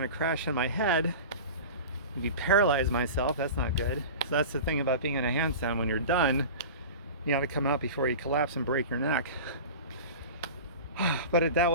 to crash on my head. Maybe paralyze myself. That's not good. So that's the thing about being in a handstand. When you're done, you got to come out before you collapse and break your neck. But that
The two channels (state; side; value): inverted; both; correlation -0.33